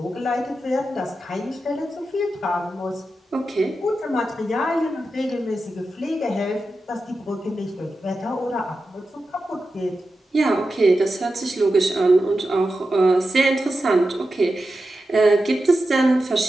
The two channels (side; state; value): both; normal; correlation 0.91